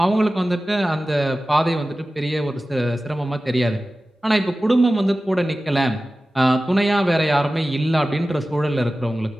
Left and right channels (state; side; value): normal; both; correlation 0.96